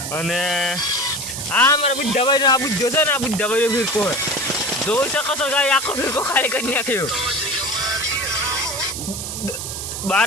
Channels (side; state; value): right; noise; hiss, 6 dB below the sound